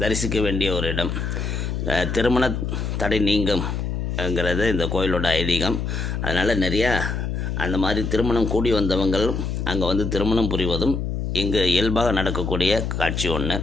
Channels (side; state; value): left; noise; hum, 2 dB below the sound